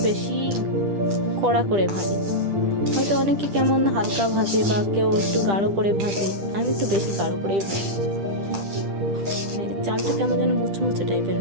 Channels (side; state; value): left; late; 10 ms